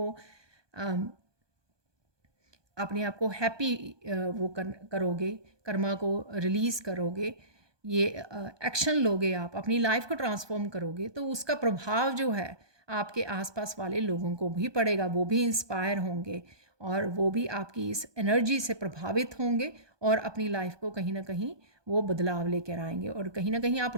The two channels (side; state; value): left; late; 1.2 ms